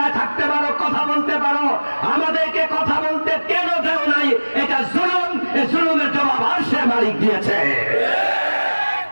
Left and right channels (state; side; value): inverted; both; correlation -1.00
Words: থাকতে পারো, কথা বলতে পারো, আমাদেরকে কথা বলতে কেন দেও নাই? এটা জুলুম। এই জুলুমের জবাব আরশের মালিক দিয়েছে।